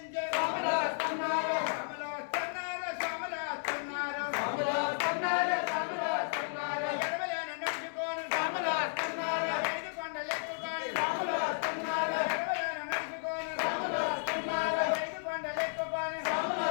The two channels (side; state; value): right; silent; digital silence